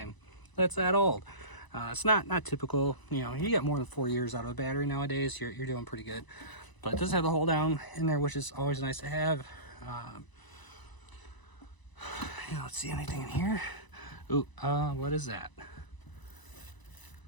That's that old. It's not typical. You know, you get more than 4 years out of a battery nowadays, you're doing pretty good. But it does have the hold down in there, which is always nice to have. Let's see, anything in here? Ooh, what is that?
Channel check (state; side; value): late; right; 1.0 ms